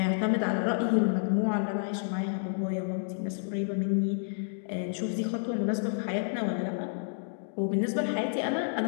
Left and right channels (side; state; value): right; silent; digital silence